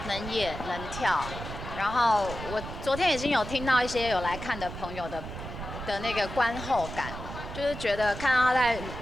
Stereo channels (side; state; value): right; noise; rumble, 9 dB below the sound